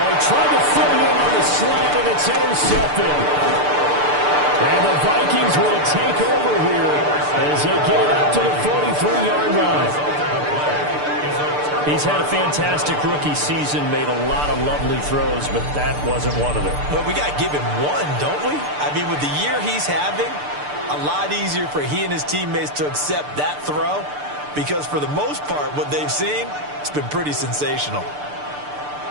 he tried to fit it in on the slant, and it's intercepted. And the Vikings will take over here as they get it up to the 43-yard line. He's had a fantastic rookie season, made a lot of lovely throws, but that wasn't one of them. Well, we got to give him one, don't we? I mean, with the year he's having, a lot easier for he and his teammates to accept that throw because for the most part, what they've seen, it's been pretty sensational.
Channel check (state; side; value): late; left; 6.8 ms